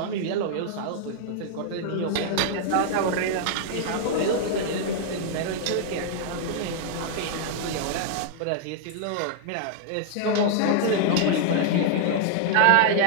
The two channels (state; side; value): different; both; correlation -0.01